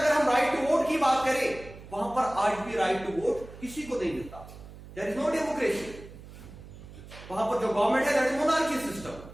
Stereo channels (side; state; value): right; noise; hum, 16 dB below the sound